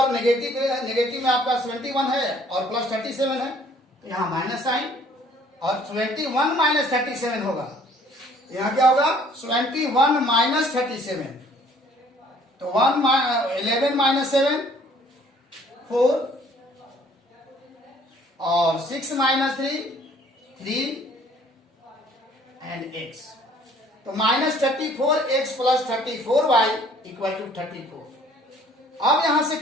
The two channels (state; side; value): normal; both; correlation 0.58